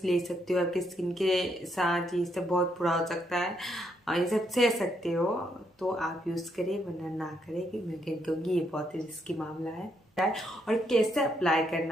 ले सकते हो, आपकी स्किन के साथ ये सब बहुत बुरा हो सकता है, ये सब सह सकते हो, तो आप यूज़ करें, वरना ना करें, कि मैं कहूँगी ये बहुत ही रिस्की मामला है। और कैसे अप्लाई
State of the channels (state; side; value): normal; both; correlation 0.76